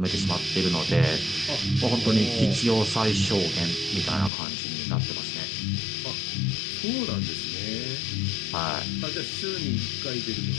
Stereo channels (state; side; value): drops out; right; at 4.3 s